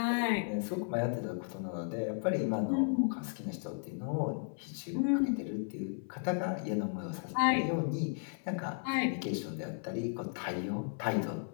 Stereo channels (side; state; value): right; silent; 55 dB below the other